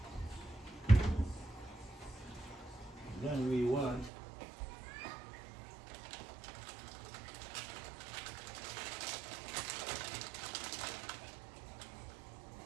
Then we want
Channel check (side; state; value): left; drops out; at 4.1 s